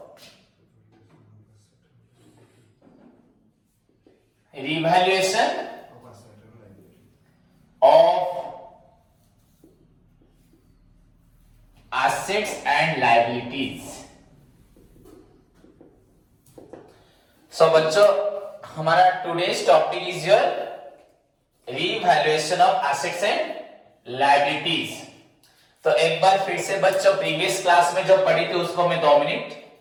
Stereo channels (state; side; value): identical; both; correlation 1.00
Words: revaluation of assets and liabilities. So बच्चों हमारा today's topic is your revaluation of assets and liabilities. तो एक बार फिर से बच्चों प्रीवियस क्लास में जो पढ़ी थी उसको मैं 2 मिनट